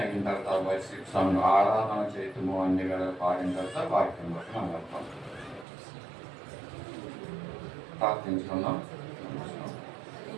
అయిన తర్వాత వైశిక్షంలో ఆరాధన చేయటము అన్ని వేళ పాడిన తర్వాత వాక్యం బట్టి మనం వెళ్తాం. ప్రార్థించుకుందాం.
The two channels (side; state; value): left; drops out; at 5.7 s